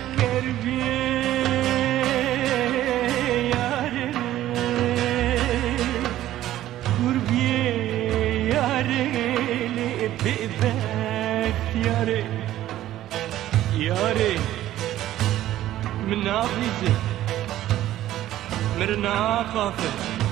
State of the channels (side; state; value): left; quieter; 13.7 dB